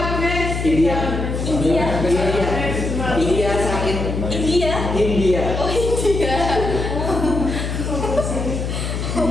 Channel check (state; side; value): noise; left; hum, 3 dB below the sound